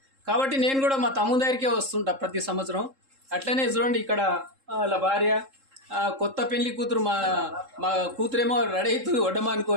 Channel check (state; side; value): late; left; 3.7 ms